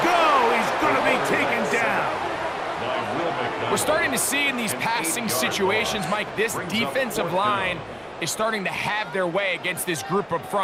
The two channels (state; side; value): identical; both; correlation 1.00